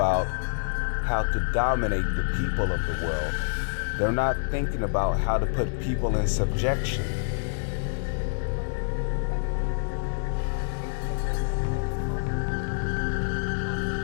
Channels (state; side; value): silent; right; digital silence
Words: how to dominate the people of the world. They're not thinking about how to put people in subjection.